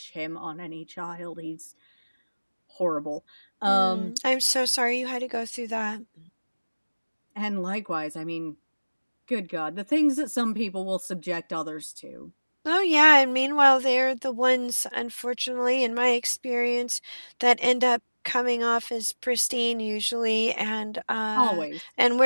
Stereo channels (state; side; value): inverted; both; correlation -1.00